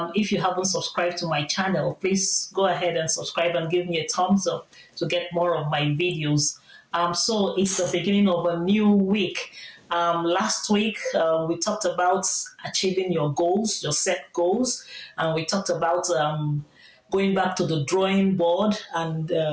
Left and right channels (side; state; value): both; identical; correlation 1.00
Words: you haven't subscribed to my channel, please go ahead and subscribe and give me a thumbs up to get more of my videos. So it's the beginning of a new week. Last week, we talked about achieving your goals, your set goals, and we talked about going back to the drawing board and